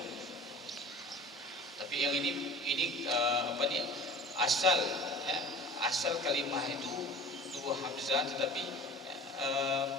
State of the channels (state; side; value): normal; both; correlation 0.41